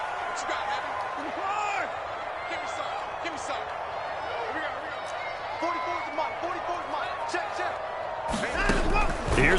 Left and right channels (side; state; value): both; identical; correlation 1.00